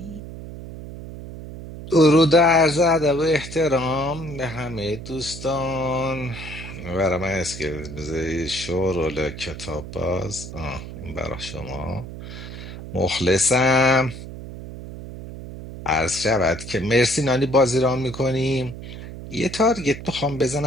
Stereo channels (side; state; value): right; noise; hum, 11 dB below the sound